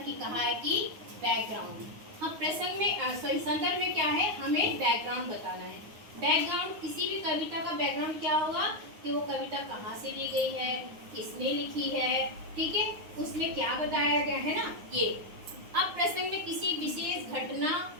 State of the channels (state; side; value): late; left; 9.5 ms